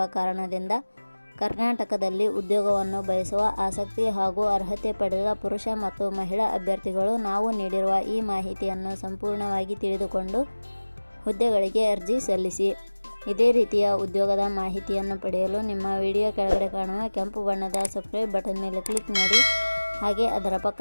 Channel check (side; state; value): both; inverted; correlation -1.00